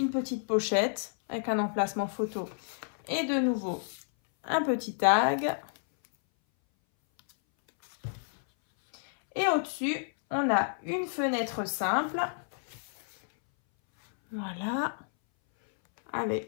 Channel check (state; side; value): silent; right; 58 dB below the other